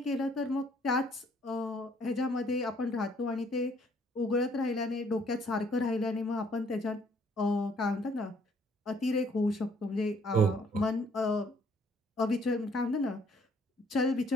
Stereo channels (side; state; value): both; normal; correlation 0.63